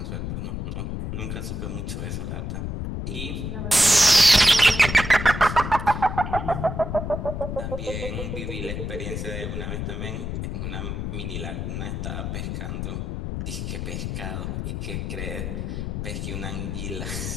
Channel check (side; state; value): left; noise; rumble, 3 dB below the sound